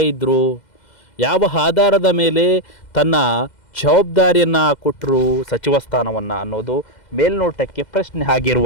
ಇದ್ದರು, ಯಾವ ಆಧಾರದ ಮೇಲೆ ತನ್ನ ಜವಾಬ್ದಾರಿಯನ್ನು ಕೊಟ್ಟರು ಸಚಿವ ಸ್ಥಾನವನ್ನು ಅನ್ನೋದು ಮೇಲ್ನೋಟಕ್ಕೆ ಪ್ರಶ್ನೆ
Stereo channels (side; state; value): right; late; 2.0 ms